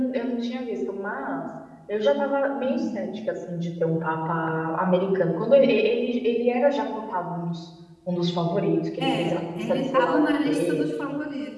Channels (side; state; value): both; identical; correlation 1.00